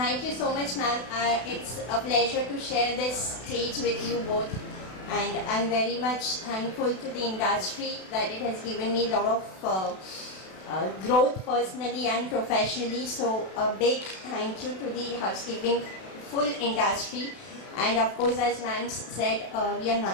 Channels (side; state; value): right; late; 32 ms